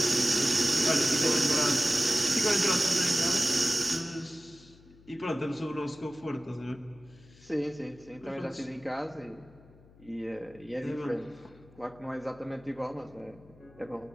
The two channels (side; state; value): left; noise; hum, 25 dB below the sound